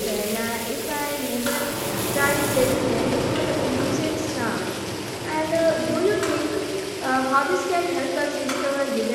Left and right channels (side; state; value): both; identical; correlation 1.00